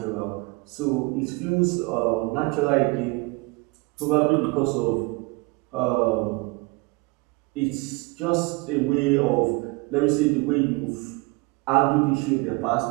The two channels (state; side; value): quieter; left; 26.4 dB